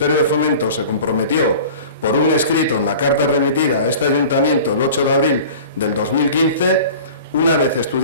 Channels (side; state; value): both; inverted; correlation -0.40